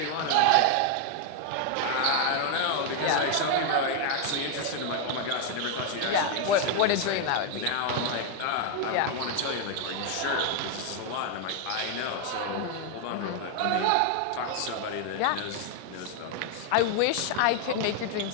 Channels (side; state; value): both; different; correlation 0.01